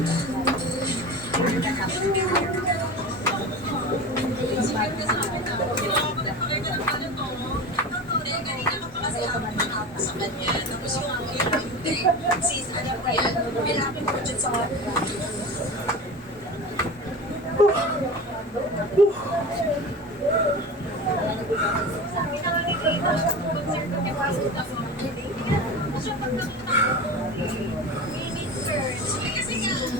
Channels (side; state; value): both; normal; correlation 0.31